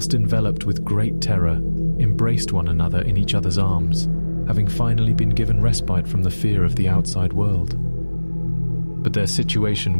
enveloped with great terror, embraced one another in each other's arms, having finally been given respite from the fear of the outside world. But their situation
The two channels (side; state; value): both; inverted; correlation -1.00